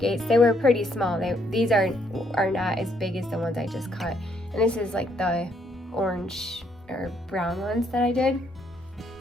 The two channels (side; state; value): both; normal; correlation 0.71